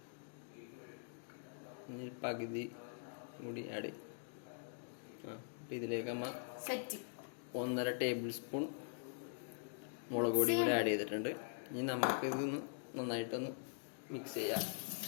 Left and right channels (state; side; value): silent; right; digital silence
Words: ഇനി പകുതി കൂടി ആഡ് ചെയ്യും. ഇതിലേക്ക് 1.5 ടേബിൾ സ്പൂൺ മുളക് പൊടി കൂടി ആഡ് ചെയ്തിട്ടുണ്ട്. ഇനി നമുക്ക് ഇതൊന്ന് നന്നായിട്ടൊന്ന് മിക്സ് ചെയ്യാം.